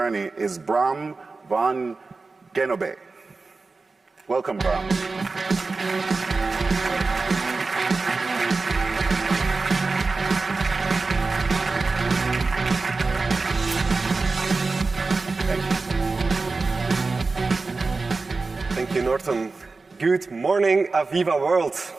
is Bram van Genobe. Welcome, Bram. Thank you, Norton. Good morning, Aviva world.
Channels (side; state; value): left; quieter; 3.9 dB